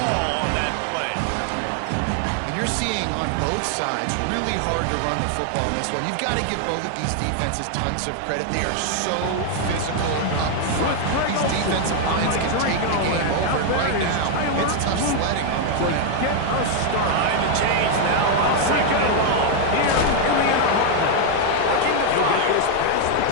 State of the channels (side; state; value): both; different; correlation 0.01